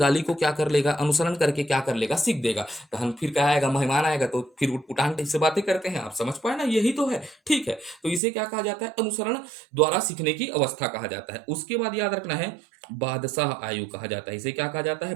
को क्या कर लेगा? अनुसरण करके क्या कर लेगा? सीख देगा। तो हम फिर क्या आएगा? मेहमान आएगा तो फिर उटपुटान टाइप से बातें करते हैं। आप समझ पाए ना? यही तो है। ठीक है। तो इसे क्या कहा जाता है? अनुसरण द्वारा सीखने की अवस्था कहा जाता है। उसके बाद याद रखना है, बादशाह आयु कहा जाता है। इसे क्या कहा जाता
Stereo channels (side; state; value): left; drops out; at 8.2 s